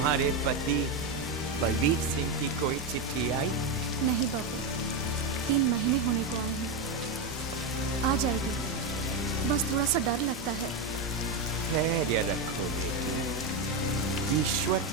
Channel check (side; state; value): left; quieter; 3.4 dB